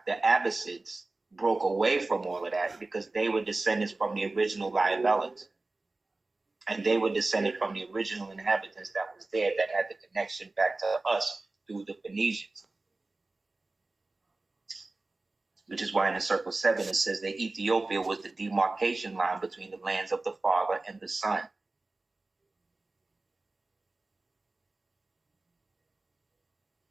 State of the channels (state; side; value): quieter; left; 3.2 dB